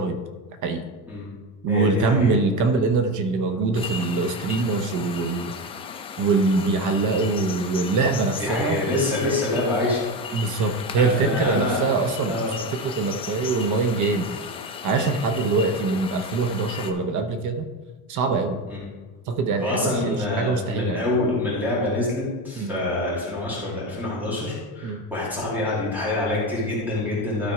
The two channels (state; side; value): normal; both; correlation 0.19